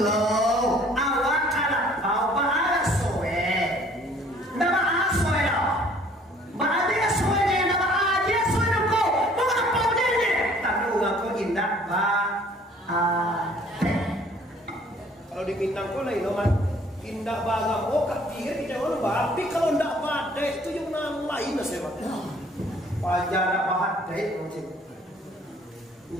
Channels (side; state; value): both; normal; correlation 0.57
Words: awak kalapau bahara soe. Nama asoe dong. Bahara soe deh nama aja soe dong kau. Bahara pau deh. Tapi orang kau indah kalau di Minang kau lain nomor. Indah bangga, kak pikir tidak orang tapi kalau ndak badai itu yang lain saya pak. Pajak ndak badai macam.